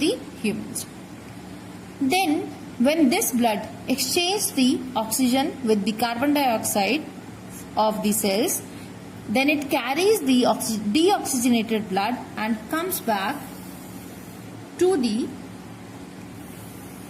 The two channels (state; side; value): identical; both; correlation 1.00